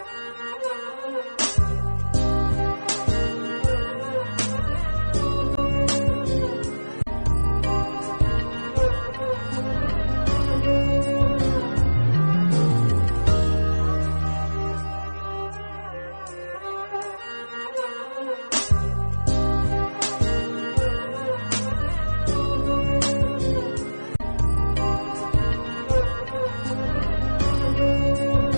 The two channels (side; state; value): both; inverted; correlation -1.00